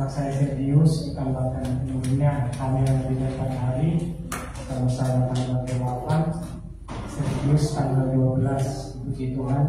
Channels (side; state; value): both; identical; correlation 1.00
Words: anak saya Sergius ditambahkan minggunya kami yang lebih 4 hari. Kalau saya tanggal 8, Sergius tanggal 12. Puji